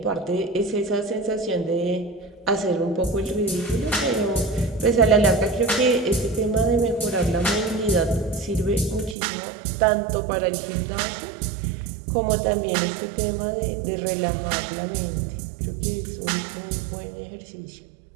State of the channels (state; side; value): drops out; left; at 9.2 s